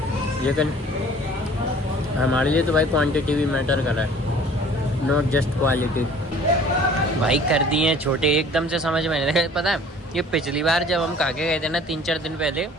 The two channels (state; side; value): normal; both; correlation 0.50